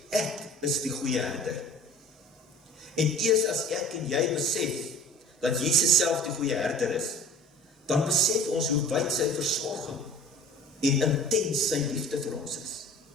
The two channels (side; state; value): both; normal; correlation 0.44